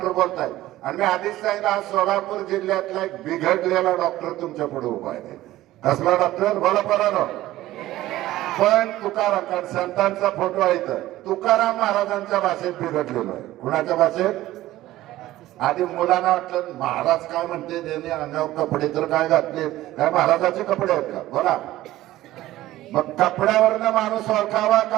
बोलताय. आणि मी आधीच सांगितलं आज सोलापूर जिल्ह्यातला एक बिघडलेला डॉक्टर तुमच्या पुढे उभा आहे. कसला डॉक्टर? बोला परानो. पण तुकाराम संतांचा फोटो आहे तर तुकाराम महाराजांच्या भाषेत बिघडलेलो आहे. कुणाच्या भाषेत? आधी मुलांना वाटलं महाराज काय म्हणते, त्यांनी अंगावर कपडे तर काय घातले, काय महाराजाचे कपडे आहेत का? बोला. मग कपड्यावरनं माणूस ओळखावा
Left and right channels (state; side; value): quieter; left; 15.6 dB